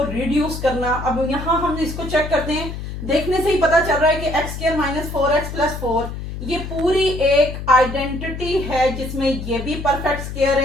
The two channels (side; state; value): left; noise; hum, 8 dB below the sound